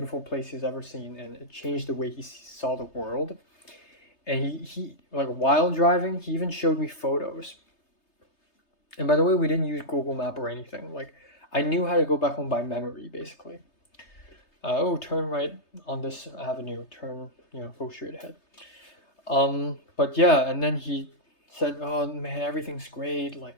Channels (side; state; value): right; late; 3.3 ms